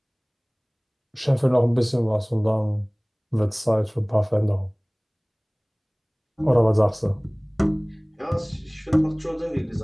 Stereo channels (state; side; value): identical; both; correlation 1.00